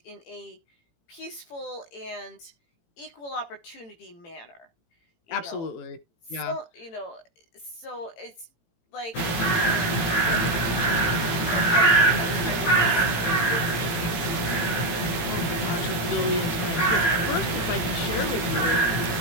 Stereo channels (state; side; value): late; right; 18 ms